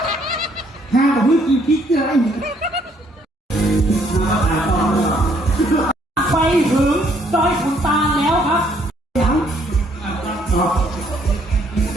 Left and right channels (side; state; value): both; normal; correlation 0.66